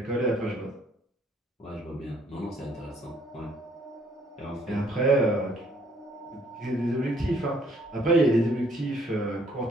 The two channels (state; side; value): normal; both; correlation 0.64